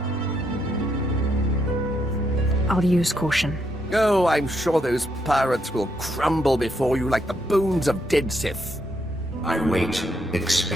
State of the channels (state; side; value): normal; both; correlation 0.77